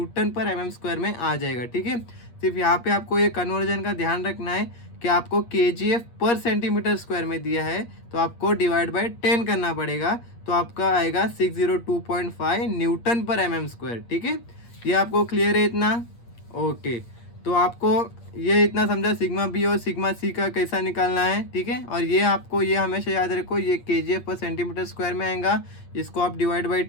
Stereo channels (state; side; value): late; right; 8.5 ms